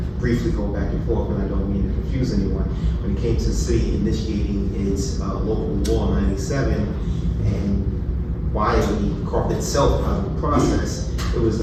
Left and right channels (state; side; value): identical; both; correlation 1.00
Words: briefly go back and forth, and I don't mean to confuse anyone, when it came to the city initiating its local law 97 and why we carved itself out of the process, it was